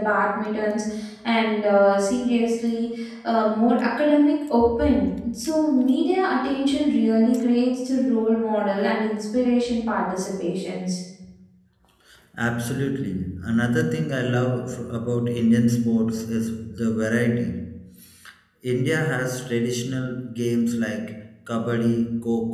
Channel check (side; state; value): both; identical; correlation 1.00